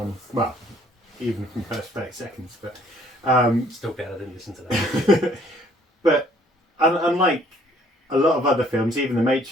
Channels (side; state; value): both; normal; correlation 0.61